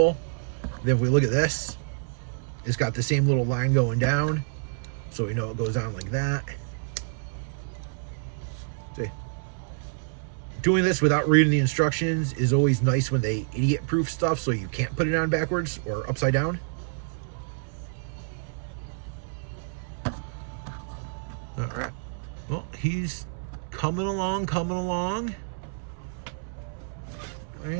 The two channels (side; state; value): left; silent; 59 dB below the other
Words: Then if we look at this, it's got the same little line going down. So we know it goes on like that. See, doing this without reading the instructions is always nice when they idiot-proof stuff so you can't put it on backwards or upside down. All right. Well, he's coming along.